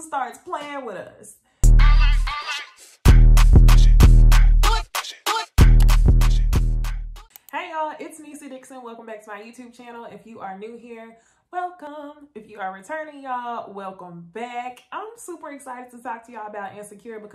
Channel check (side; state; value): both; identical; correlation 1.00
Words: starts playing with us. Hey y'all, it's Issa Dixon. Welcome back to my YouTube channel. If you are new here, welcome. If you are returning, y'all, welcome back. I'm super excited to talk to y'all about Insecure